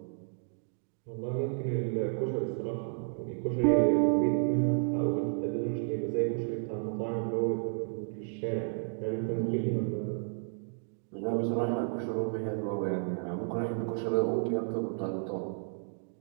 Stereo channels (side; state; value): left; silent; digital silence